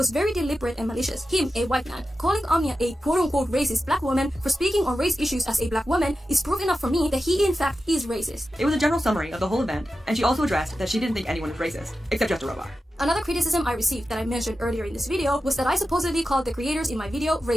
very deliberate and malicious. Him, a white man, calling Omnia a quote-unquote racist black woman for speaking on race issues as a black woman is proof enough for me that he in fact is racist. It was a general summary of the whole event, and she also addressed that she didn't think anyone was racist, except Just a Robot. Another criticism I received that I mentioned earlier in this video was that I supposedly called the creators in my video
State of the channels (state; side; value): normal; both; correlation 0.92